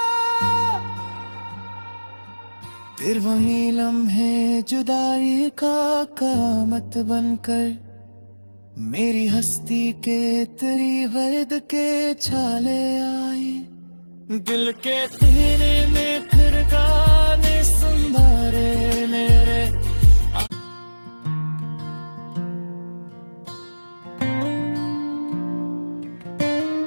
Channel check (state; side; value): inverted; both; correlation -1.00